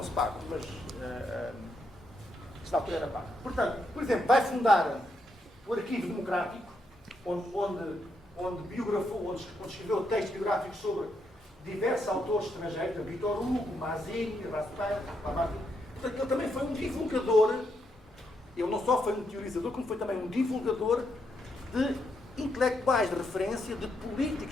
se pagam, mas na altura era pago. Portanto, por exemplo, vai fundar o Arquivo Democrático, onde biografou, onde escreveu textos biográficos sobre diversos autores estrangeiros, Victor Hugo, Mazzini, Raspail, Lamartine. Portanto, ele também foi um divulgador, ele não só foi um teorizador, como foi também um divulgador de intelectuais de referência, de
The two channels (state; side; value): normal; both; correlation 0.79